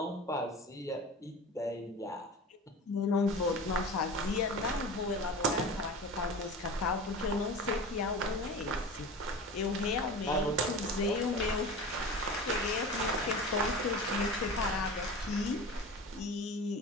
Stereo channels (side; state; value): both; normal; correlation 0.33